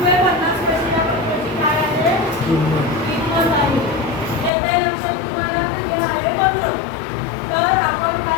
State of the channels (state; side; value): drops out; right; at 4.5 s